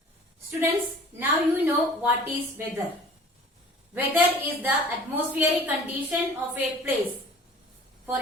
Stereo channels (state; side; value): normal; both; correlation 0.47